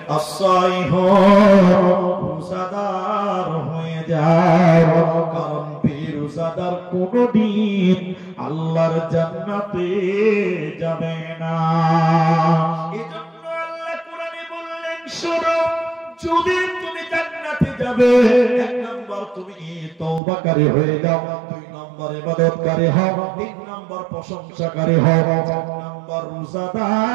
আসাইহু রোজাদার হয়ে যাও কারণ রোজাদার কোনদিন আল্লাহর জান্নাতে যাবে না এজন্য আল্লাহ কোরআনে বললেন শোনো যদি তুমি জান্নাতে যাবে 1 নাম্বার তুমি তওবাকারী হয়ে যাও 2 নাম্বার ইবাদতকারী হও 3 নাম্বার প্রশংসাকারী হও 4 নাম্বার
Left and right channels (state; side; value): drops out; left; at 20.2 s